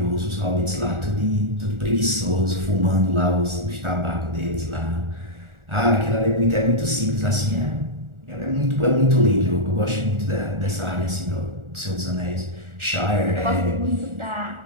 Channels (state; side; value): late; left; 1.4 ms